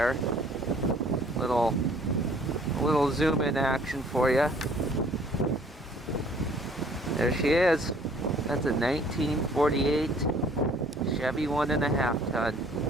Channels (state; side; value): normal; both; correlation 0.56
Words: Little zoom in action for you. There she is. That's a 1948 Chevy 1.5 ton.